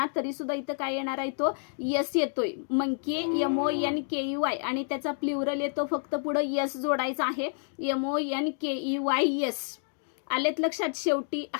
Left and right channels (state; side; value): silent; right; digital silence